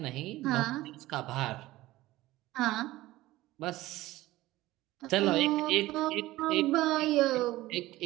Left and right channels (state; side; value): quieter; left; 17.4 dB